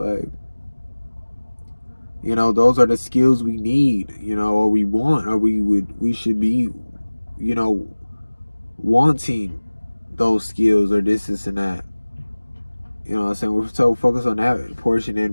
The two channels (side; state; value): both; inverted; correlation -1.00